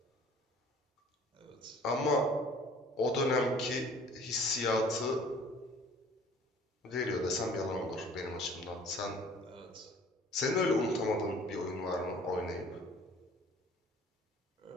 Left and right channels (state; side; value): normal; both; correlation 0.51